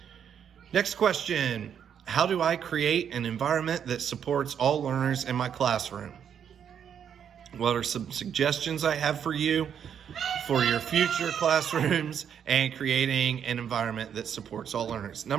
Next question. How do I create an environment that supports all learners in my classroom? What are some suggestions I have for you for your future classrooms and creating an environment that supports all learners?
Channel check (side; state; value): left; quieter; 8.4 dB